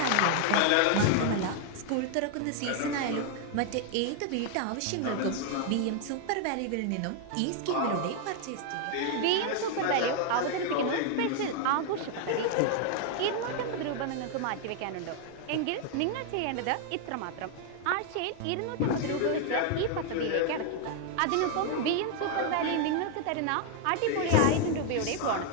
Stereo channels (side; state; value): both; different; correlation 0.00